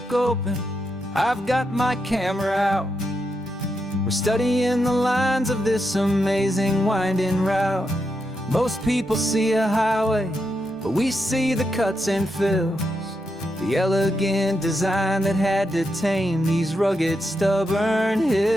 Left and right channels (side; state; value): both; normal; correlation 0.84